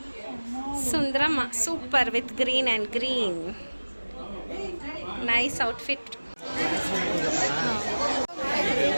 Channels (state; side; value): inverted; both; correlation -1.00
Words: Sundaramma super with green and green, nice outfit.